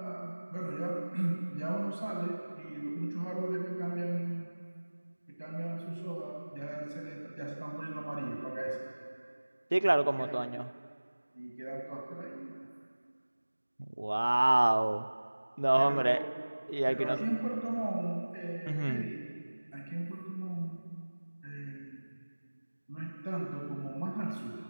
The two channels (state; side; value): inverted; both; correlation -1.00